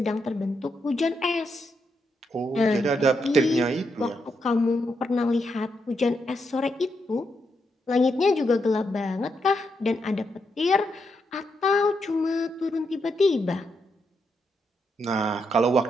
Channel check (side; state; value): both; normal; correlation 0.81